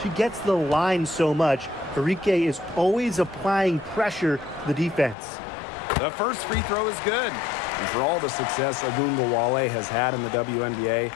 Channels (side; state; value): right; drops out; at 5.2 s